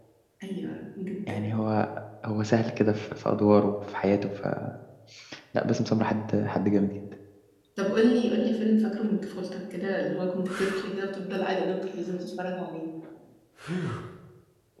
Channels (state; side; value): identical; both; correlation 1.00